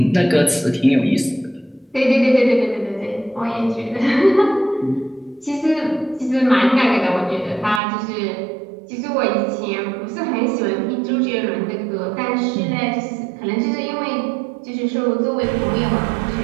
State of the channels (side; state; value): left; drops out; at 7.8 s